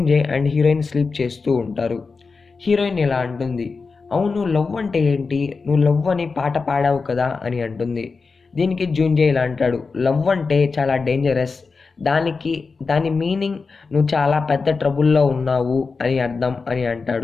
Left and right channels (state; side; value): quieter; right; 4.5 dB